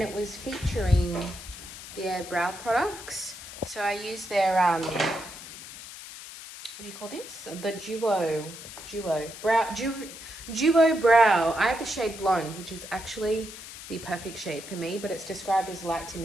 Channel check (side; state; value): left; noise; hiss, 13 dB below the sound